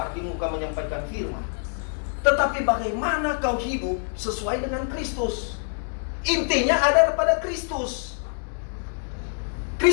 di muka menyampaikan firman. Tetapi bagaimana kau hidup sesuai dengan Kristus. Intinya ada pada Kristus.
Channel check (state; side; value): silent; right; digital silence